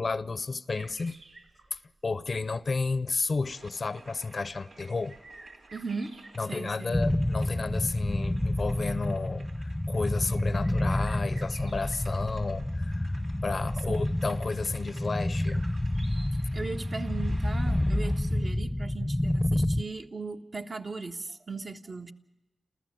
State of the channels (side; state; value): both; normal; correlation 0.98